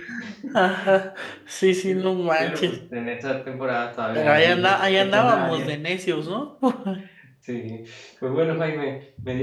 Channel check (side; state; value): both; identical; correlation 1.00